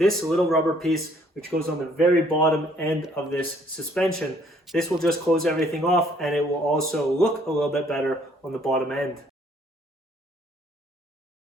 little rubber piece which goes on the very bottom end of this suspension. This will just close everything off, and it will also look a little bit better on the bottom end.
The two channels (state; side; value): normal; both; correlation 0.63